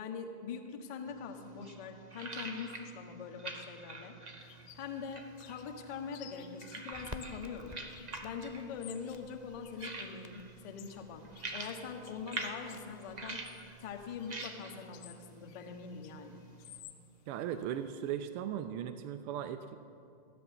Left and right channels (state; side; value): late; left; 2.0 ms